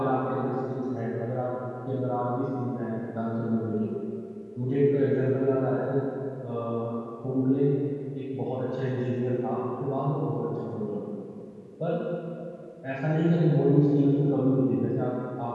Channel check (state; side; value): identical; both; correlation 1.00